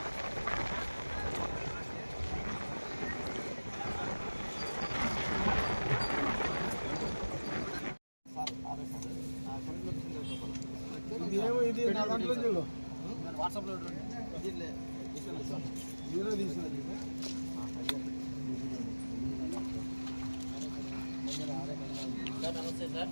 ఇది నా దాంట్లో చూడు వాట్సాప్లో నమస్తే సార్.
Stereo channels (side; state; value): both; inverted; correlation -1.00